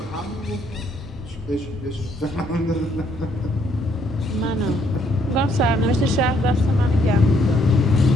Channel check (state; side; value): normal; both; correlation 0.69